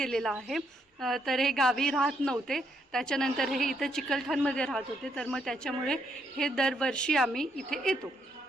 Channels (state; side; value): normal; both; correlation 0.74